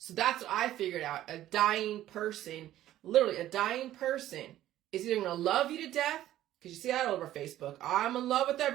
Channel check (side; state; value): left; quieter; 13.4 dB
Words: that's what I figured out. A dying person, literally a dying person, is either going to love you to death, because you see that all over Facebook. I'm in love with